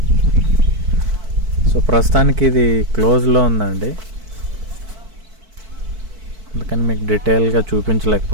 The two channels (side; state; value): left; late; 4.5 ms